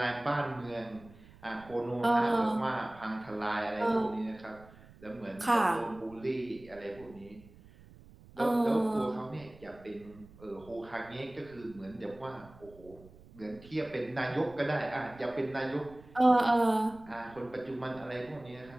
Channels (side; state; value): right; noise; rumble, 22 dB below the sound